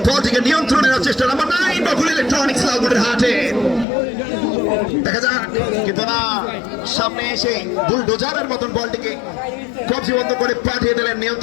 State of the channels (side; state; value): right; drops out; at 3.9 s